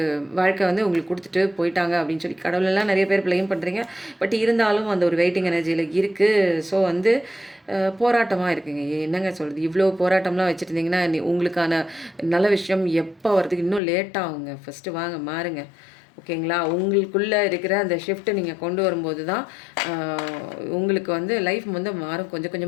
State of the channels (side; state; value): right; drops out; at 13.8 s